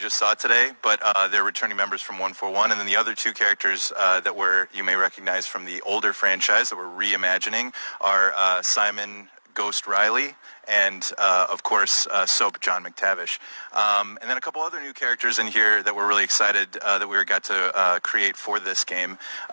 saw today, but they're returning members from 141, and then the other two characters that you may recognize from the older franchise that we're reimagining are Simon Ghost Riley and, of course, Soap John McTavish. And then a couple other new characters in here that we're really excited that we got to create for this game.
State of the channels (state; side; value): inverted; both; correlation -1.00